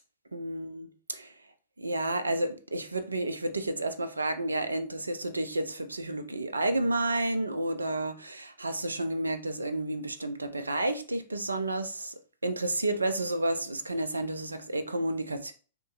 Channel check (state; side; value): inverted; both; correlation -0.84